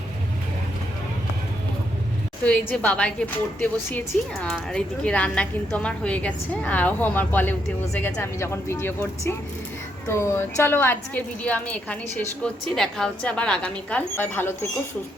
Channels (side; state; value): both; normal; correlation 0.77